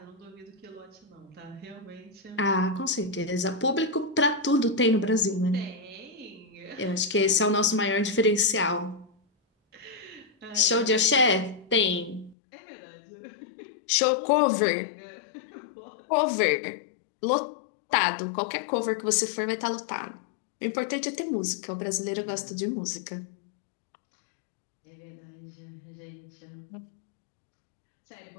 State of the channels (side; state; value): right; drops out; at 12.4 s